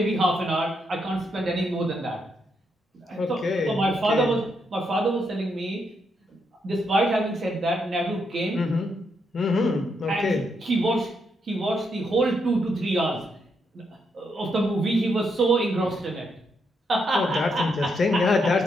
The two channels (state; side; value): normal; both; correlation 0.79